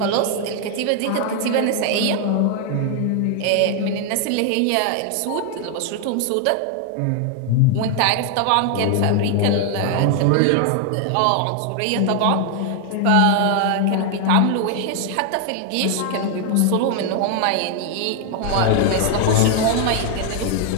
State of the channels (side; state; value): both; different; correlation 0.00